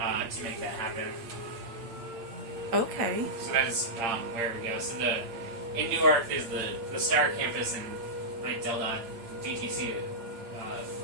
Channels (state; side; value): late; left; 8.8 ms